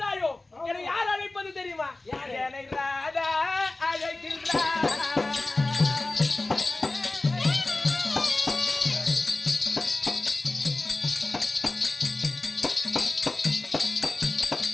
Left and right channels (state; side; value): quieter; right; 3.1 dB